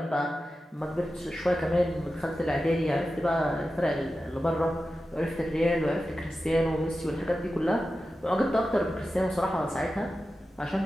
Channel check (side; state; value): both; normal; correlation 0.93